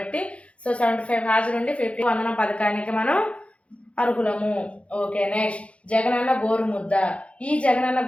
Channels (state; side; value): late; right; 0.062 ms